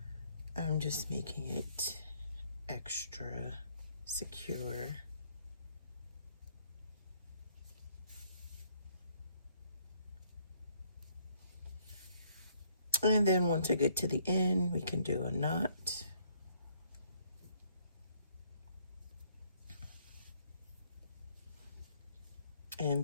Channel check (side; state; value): both; inverted; correlation -0.66